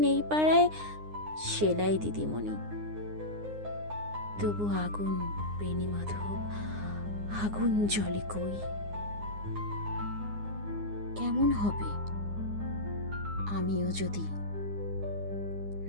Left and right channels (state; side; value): late; left; 9.7 ms